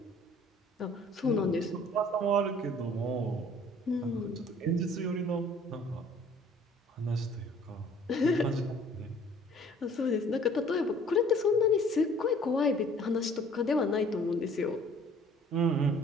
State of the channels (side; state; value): both; normal; correlation 0.54